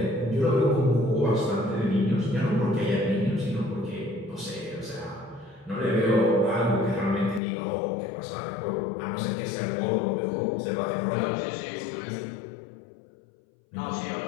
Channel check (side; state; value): right; drops out; at 7.4 s